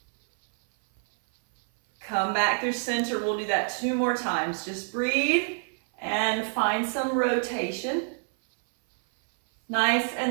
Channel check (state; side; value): silent; left; 60 dB below the other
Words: Come back through center. We'll do that 2 more times. Just breathe and find some rotation. Nice